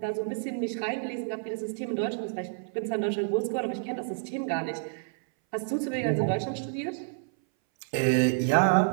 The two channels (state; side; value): silent; left; 59 dB below the other